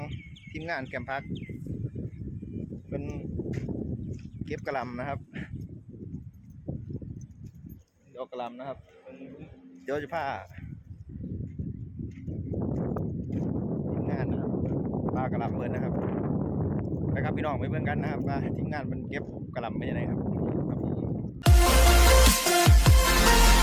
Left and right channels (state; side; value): identical; both; correlation 1.00